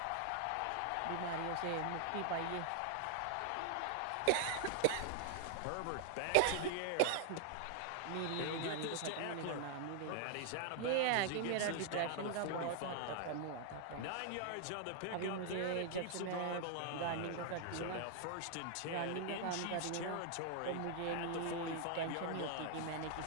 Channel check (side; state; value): both; different; correlation 0.00